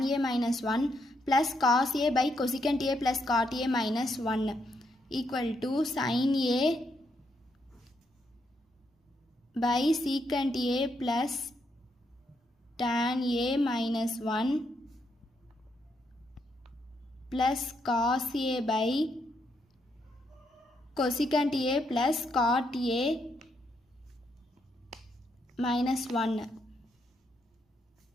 a minus 1 plus cos a by cosecant a plus cot a minus 1 equal to sin a by secant a plus tan a minus 1 plus cos a by cosecant a plus cot a minus 1.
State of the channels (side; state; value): both; normal; correlation 0.78